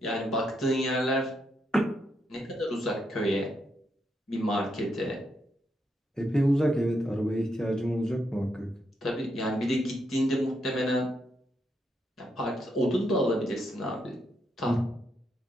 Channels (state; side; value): normal; both; correlation 0.80